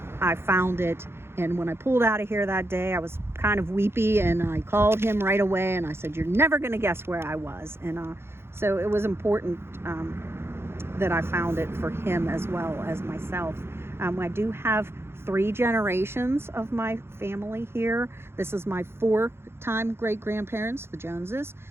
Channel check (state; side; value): late; left; 0.12 ms